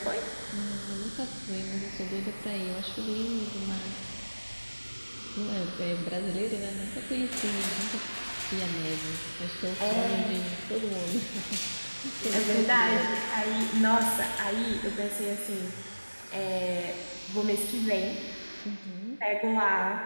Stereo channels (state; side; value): inverted; both; correlation -1.00